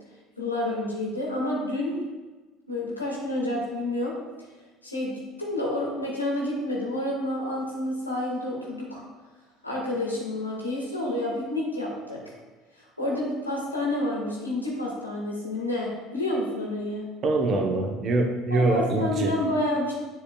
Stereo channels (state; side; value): normal; both; correlation 0.47